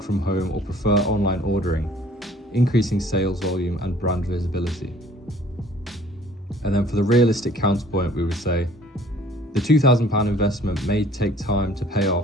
from home or prefer online ordering, increasing sales volume and brand visibility. And then for the realistic counterpoint, we would say, the £2,000 investment may take time to pay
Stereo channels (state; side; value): normal; both; correlation 0.54